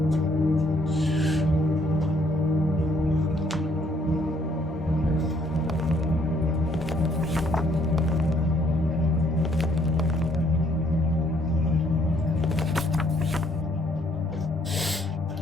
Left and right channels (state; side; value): normal; both; correlation 0.66